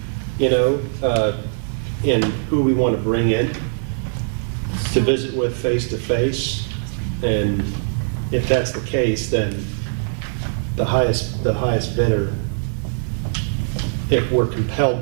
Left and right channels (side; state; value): left; silent; digital silence